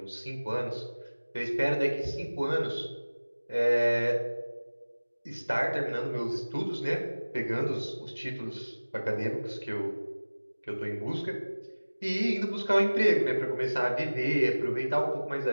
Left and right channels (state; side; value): inverted; both; correlation -1.00